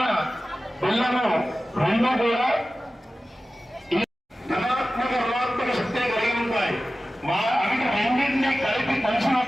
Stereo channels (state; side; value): normal; both; correlation 0.95